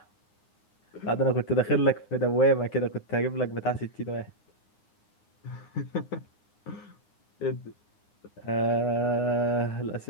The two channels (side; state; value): right; late; 9.7 ms